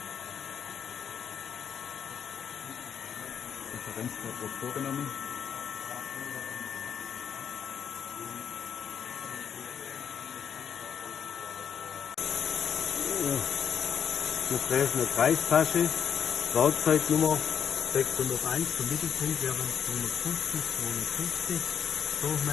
Referenzwort wird vorgenommen. Wir treffen eine Kreistasche, Werkzeugnummer 601, der Mittelpunkt wäre 250, 250,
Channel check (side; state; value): right; quieter; 8.0 dB